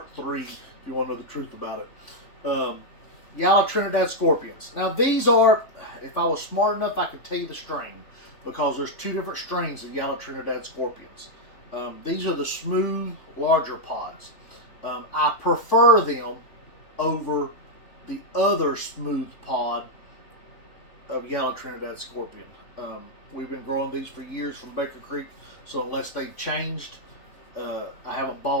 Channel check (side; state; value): right; late; 3.6 ms